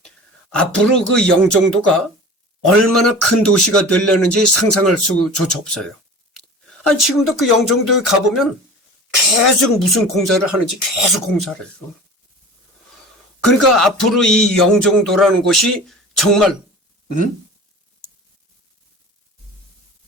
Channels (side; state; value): both; normal; correlation 0.38